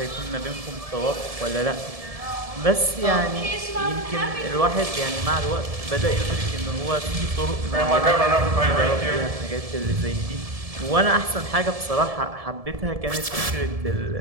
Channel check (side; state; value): left; late; 1.7 ms